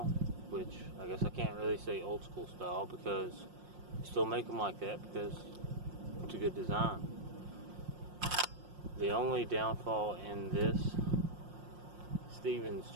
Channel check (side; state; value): left; late; 5.6 ms